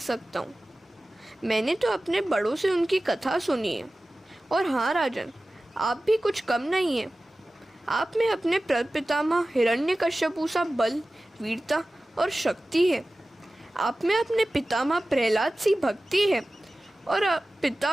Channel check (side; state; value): both; normal; correlation 0.96